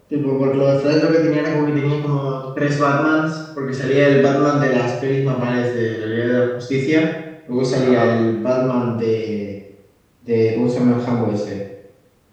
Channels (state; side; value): identical; both; correlation 1.00